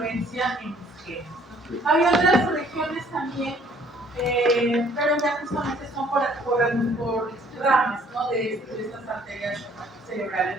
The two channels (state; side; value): normal; both; correlation 0.60